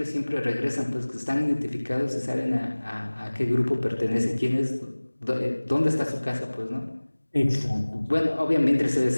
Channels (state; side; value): inverted; both; correlation -1.00